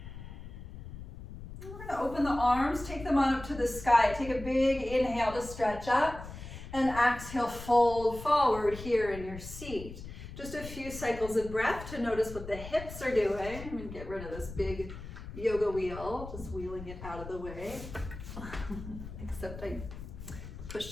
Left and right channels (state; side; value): noise; left; rumble, 12 dB below the sound